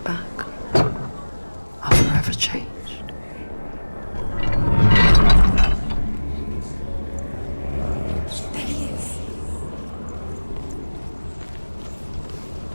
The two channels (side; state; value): both; inverted; correlation -1.00